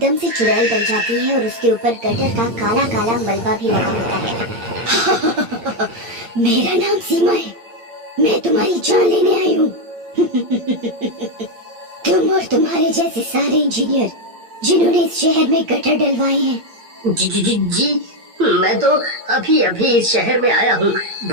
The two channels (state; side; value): late; left; 8.7 ms